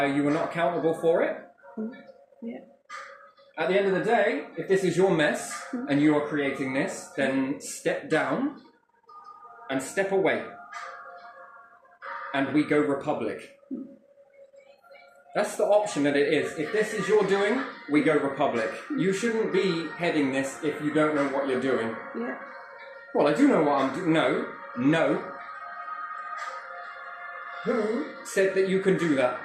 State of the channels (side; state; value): both; identical; correlation 1.00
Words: are you not accountable for it? Yeah. At the end of the day, if this is your mess and you are creating this, then step down and step away. and we go republic. That's the option that it is. If this is your doing, we go republic. You shouldn't be heading this if you don't know what you're doing. Yeah. Well, I do know what I'm doing. No, no. Who said that you can do that?